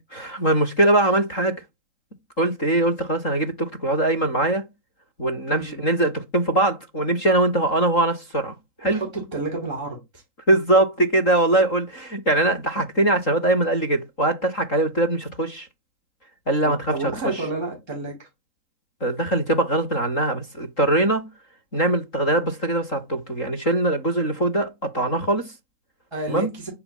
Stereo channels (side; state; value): right; late; 3.8 ms